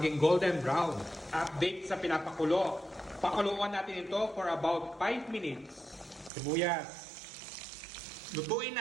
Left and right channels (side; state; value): left; drops out; at 6.3 s